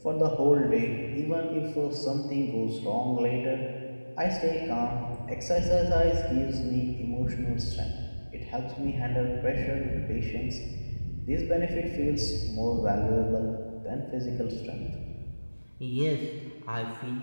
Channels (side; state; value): both; inverted; correlation -1.00